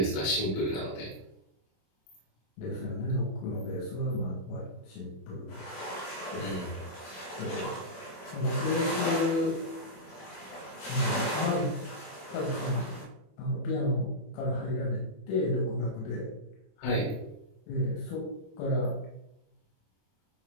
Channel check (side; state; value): right; late; 27 ms